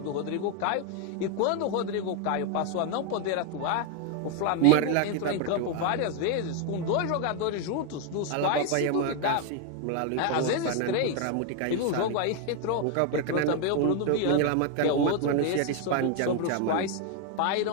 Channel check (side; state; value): both; different; correlation 0.01